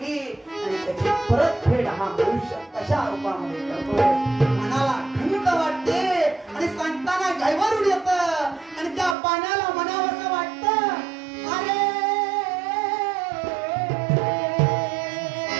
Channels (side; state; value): left; drops out; at 9.2 s